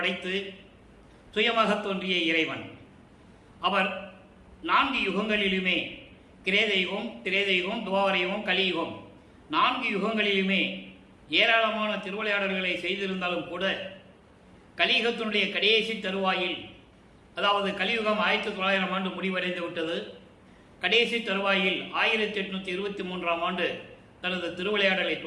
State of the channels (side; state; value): both; identical; correlation 1.00